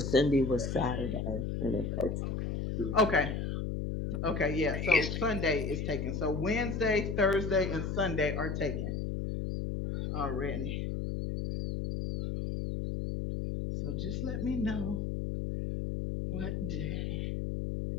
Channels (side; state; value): left; noise; hum, 2 dB below the sound